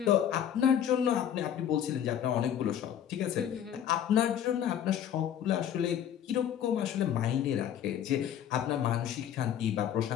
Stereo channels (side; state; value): right; quieter; 9.7 dB